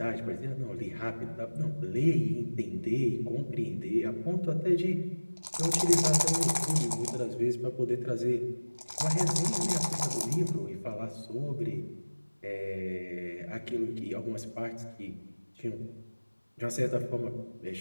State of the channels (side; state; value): both; inverted; correlation -1.00